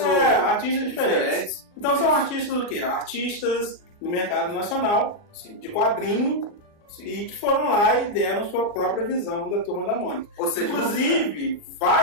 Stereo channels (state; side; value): late; right; 39 ms